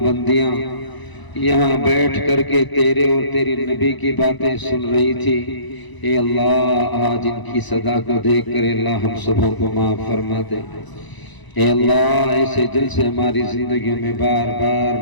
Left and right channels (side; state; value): right; late; 1.0 ms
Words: بندیاں یہاں بیٹھ کر کے تیرے اور تیری نبی کی باتیں سن رہی تھی. اے اللہ آج ان کی صدا کو دیکھ کر اللہ ہم سبوں کو معاف فرما دے. اے اللہ ایسے جلسے ہماری زندگیوں میں بار